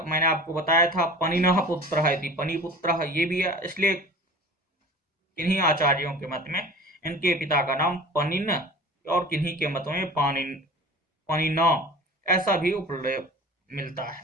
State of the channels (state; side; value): normal; both; correlation 0.40